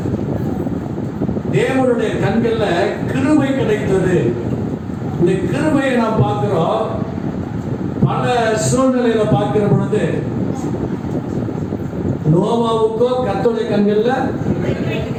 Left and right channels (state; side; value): identical; both; correlation 1.00